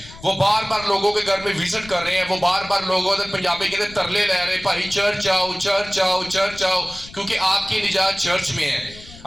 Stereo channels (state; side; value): noise; left; rumble, 18 dB below the sound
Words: وہ بار بار لوگوں کے گھر میں وزٹ کر رہے ہیں. وہ بار بار لوگوں سے پنجابی کے اندر ترلے لے رہے ہیں، بھائی چرچ آؤ چرچ آؤ چرچ آؤ، کیونکہ آپ کی نجات چرچ میں ہے.